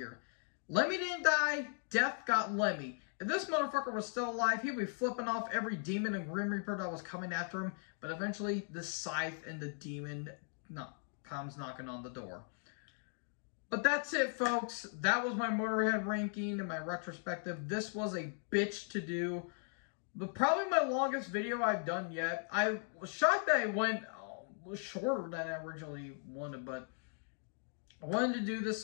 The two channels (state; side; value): silent; right; 53 dB below the other